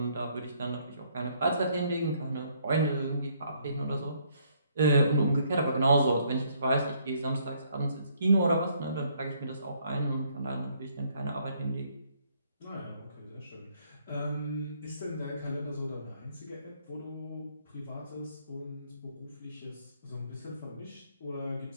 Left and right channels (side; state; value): both; inverted; correlation -0.67